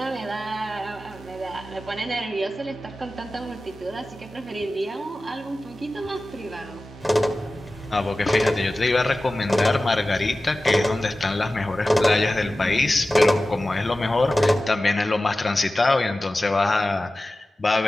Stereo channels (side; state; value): both; normal; correlation 0.96